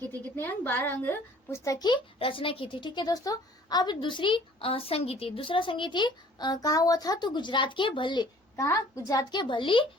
थी। कितने अंग? 12 अंग पुस्तक की रचना की थी, ठीक है दोस्तों। अब दूसरा संगीति कहाँ हुआ था? तो गुजरात के भल्ली। कहाँ? गुजरात के भल्ली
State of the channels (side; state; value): both; normal; correlation 0.54